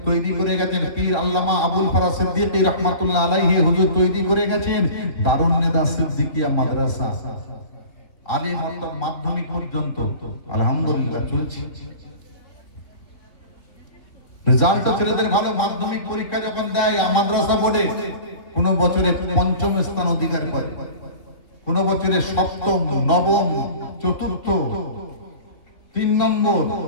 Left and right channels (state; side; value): late; right; 3.6 ms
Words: তৈরি করে গেছেন, পীর আল্লামা আবুল ফরাজ সিদ্দিকী রাহমাতুল্লাহ আলাইহি হুজুর তৈরি করে গেছেন দারুন নেদা সিদ্দিকিয়া মাদ্রাসা, আলিম অর্থাৎ মাধ্যমিক পর্যন্ত আলহামদুলিল্লাহ চলছে। রেজাল্ট ছেলেদের ভালো, মাধ্যমিক পরীক্ষা যখন দেয় মাদ্রাসা বোর্ডে কোন বছরে পঞ্চম স্থান অধিকার করে, কোন বছরে সপ্তম, নবম, চতুর্থ, 3 নম্বর,